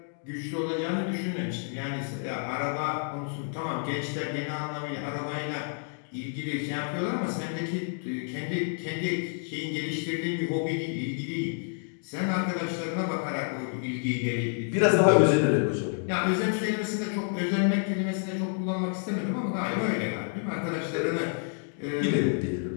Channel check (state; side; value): silent; right; 58 dB below the other